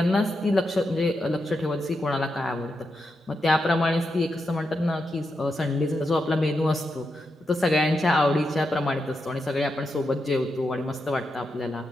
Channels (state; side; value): normal; both; correlation 0.86